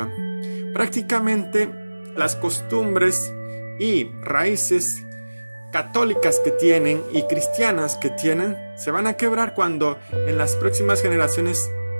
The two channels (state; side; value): inverted; both; correlation -1.00